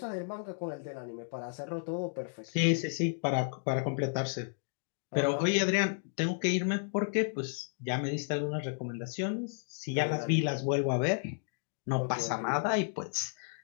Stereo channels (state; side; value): silent; right; digital silence